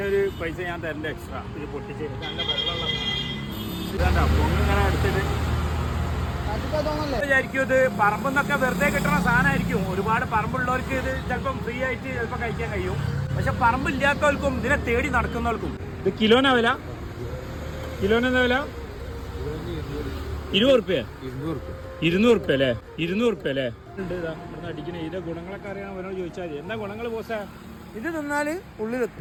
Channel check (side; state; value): both; identical; correlation 1.00